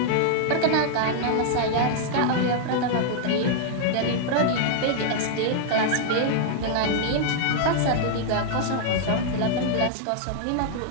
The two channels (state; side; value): different; both; correlation -0.01